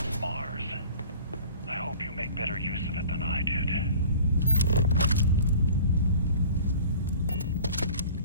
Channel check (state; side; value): inverted; both; correlation -0.45